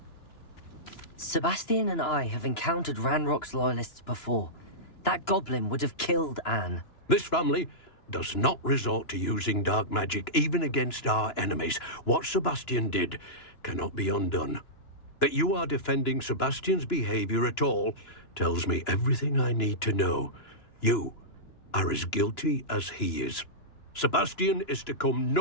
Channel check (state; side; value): late; right; 2.9 ms